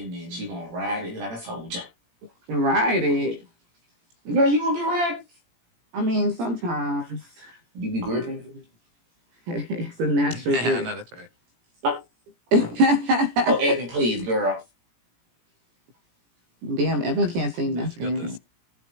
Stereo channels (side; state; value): left; late; 17 ms